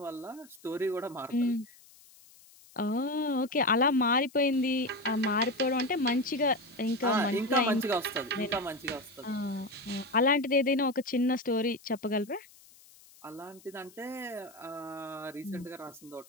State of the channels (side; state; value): left; noise; hiss, 25 dB below the sound